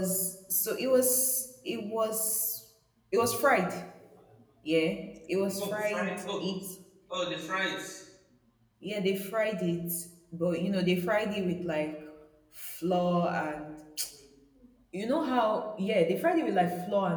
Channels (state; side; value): identical; both; correlation 1.00